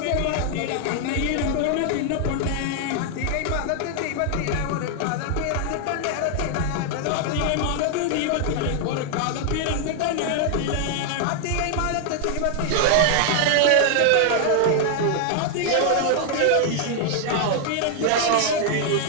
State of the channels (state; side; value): different; both; correlation 0.00